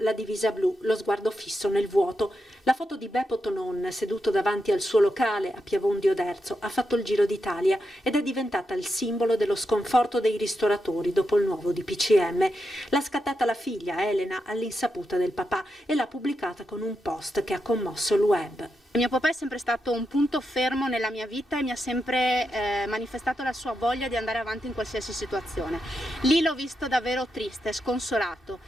divisa blu, lo sguardo fisso nel vuoto. La foto di Beppo Tonon seduto davanti al suo locale a Piavon di Oderzo ha fatto il giro d'Italia ed è diventata il simbolo dello sconforto dei ristoratori dopo il nuovo DPCM. L'ha scattata la figlia Elena all'insaputa del papà e l'ha pubblicata con un post che ha commosso il web. Mio papà è sempre stato un punto fermo nella mia vita e mi ha sempre manifestato la sua voglia di andare avanti in qualsiasi situazione. Lì l'ho visto davvero triste, sconsolato.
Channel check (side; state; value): both; normal; correlation 0.86